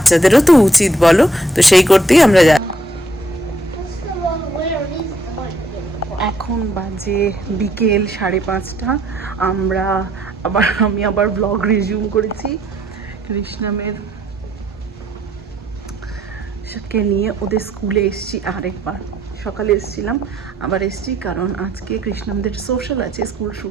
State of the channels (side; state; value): both; normal; correlation 0.69